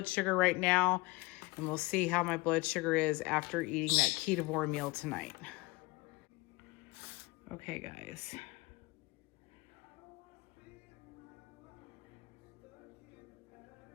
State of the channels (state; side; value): quieter; right; 22.9 dB